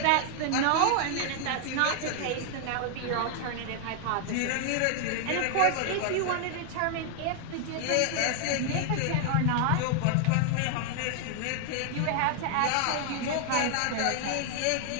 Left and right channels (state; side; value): different; both; correlation 0.00